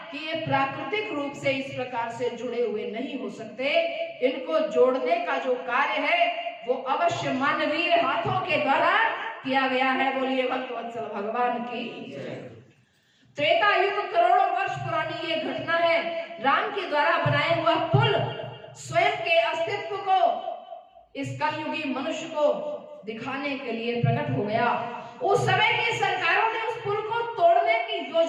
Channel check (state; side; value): identical; both; correlation 1.00